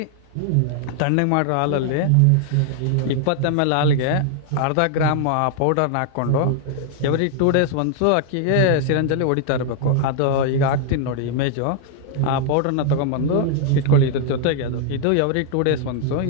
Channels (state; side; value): different; both; correlation 0.00